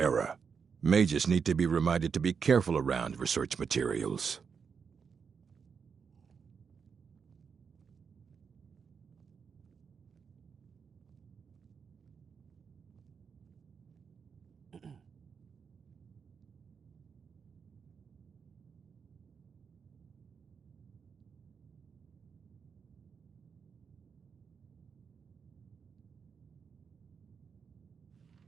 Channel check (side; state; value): left; quieter; 6.1 dB